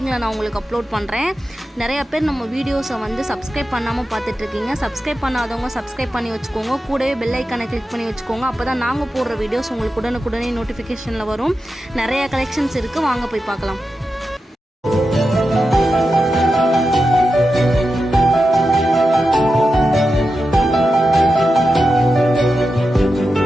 நான் உங்களுக்கு அப்லோட் பண்ணுறேன். நிறையா பேர் நம்ம வீடியோஸை வந்து சப்ஸ்கிரைப் பண்ணாமல் பார்த்துட்ருக்கீங்க. சப்ஸ்கிரைப் பண்ணாதவங்க சப்ஸ்கிரைப் பண்ணி வச்சுக்கோங்க. கூடவே பெல் ஐக்கானை கிளிக் பண்ணி வச்சுக்கோங்க. அப்போ தான் நாங்கள் போடுற வீடியோஸ் உங்களுக்கு உடனுக்குடனே நோட்டிஃபிகேஷனில் வரும். நிறைய கலெக்ஷன்ஸ் இருக்குது, வாங்க போய் பார்க்கலாம்.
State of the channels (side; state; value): both; normal; correlation 0.90